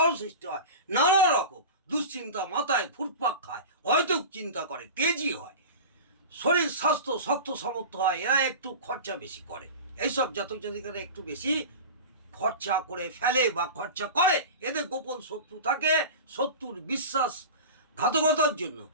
সৃষ্টি হয়। নানা রকম দুশ্চিন্তা মাথায় ঘুরপাক খায়, হয়তো চিন্তা করে, তেজি হয়, শরীর স্বাস্থ্য শক্ত সামর্থ্য হয়। এরা একটু খরচা বেশি করে। এইসব জাতক জাতিকারা একটু বেশি খরচা করে ফেলে বা খরচা করে। এদের গোপন শত্রু থাকে। শত্রুর বিশ্বাসঘাতকতার জন্য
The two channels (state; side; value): inverted; both; correlation -0.31